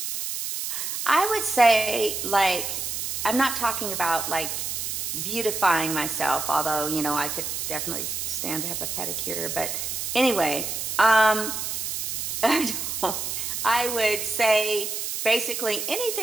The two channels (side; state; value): right; noise; hiss, 3 dB below the sound